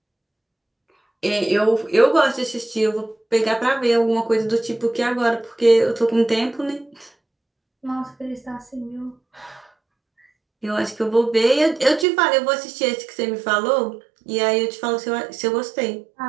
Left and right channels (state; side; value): drops out; left; at 12.1 s